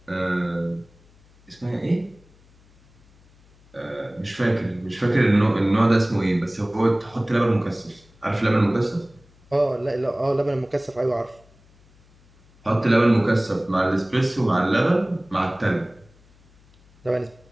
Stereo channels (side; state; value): left; noise; hum, 29 dB below the sound